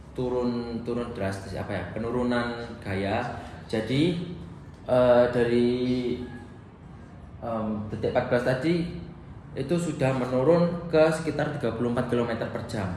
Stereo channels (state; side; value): identical; both; correlation 1.00